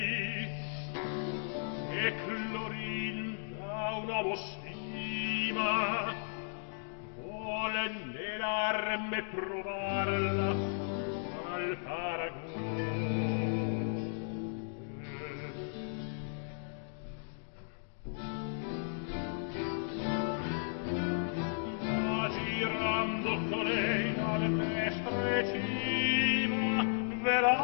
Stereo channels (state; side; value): silent; right; digital silence